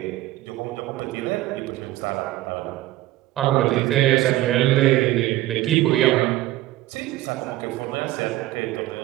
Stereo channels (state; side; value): quieter; left; 16.2 dB